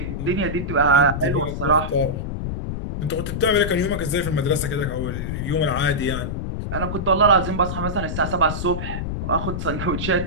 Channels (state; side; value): noise; left; rumble, 4 dB below the sound